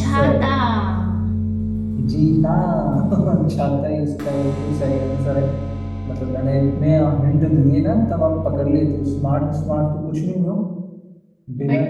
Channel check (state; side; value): identical; both; correlation 1.00